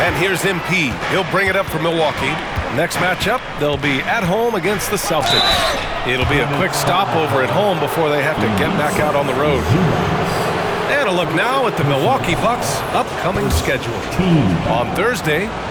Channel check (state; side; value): identical; both; correlation 1.00